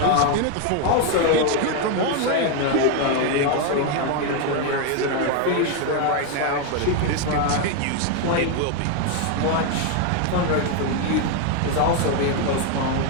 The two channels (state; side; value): different; both; correlation 0.01